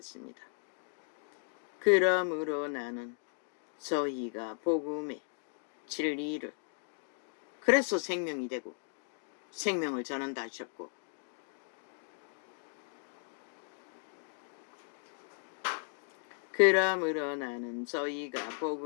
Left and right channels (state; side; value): silent; right; 54 dB below the other